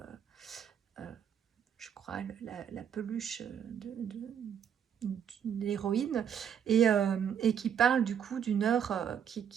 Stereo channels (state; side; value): quieter; left; 8.4 dB